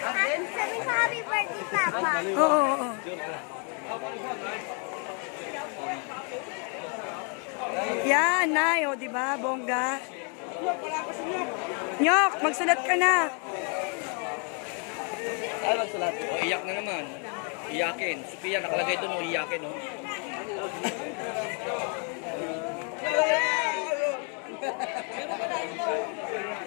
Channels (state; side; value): quieter; right; 38.8 dB